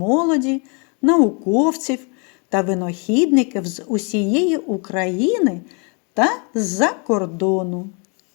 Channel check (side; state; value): right; quieter; 35.4 dB